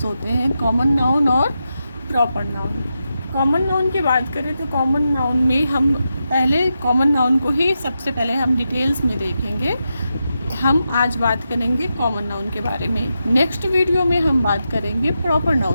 होते हैं, कॉमन नाउन और प्रॉपर नाउन। कॉमन नाउन की बात करें तो कॉमन नाउन में हम पहले कॉमन नाउन को ही सबसे पहले हम डिटेल्स में देखेंगे। हम आज बात करेंगे कॉमन नाउन के बारे में, नेक्स्ट वीडियो में हम बात करेंगे प्रॉपर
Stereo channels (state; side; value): inverted; both; correlation -0.88